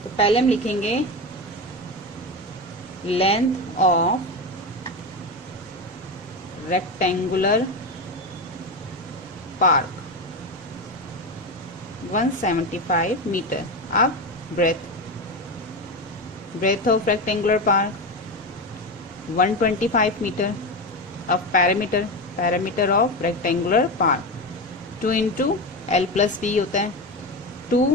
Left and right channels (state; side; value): normal; both; correlation 0.18